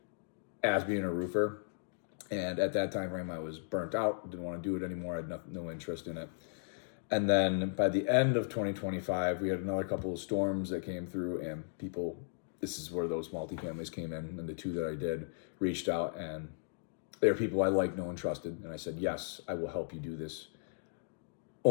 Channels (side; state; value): right; silent; digital silence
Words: as being a roofer. And at that time frame, I was burnt out, didn't want to do it anymore. I had no interest in it. And then by the end of 2025, we had another couple of storms that came through, and people, this is where those multifamilies came in, and the two that I did reached out, and they were people I liked, know, and trusted. And I said, yes, I will help you do this.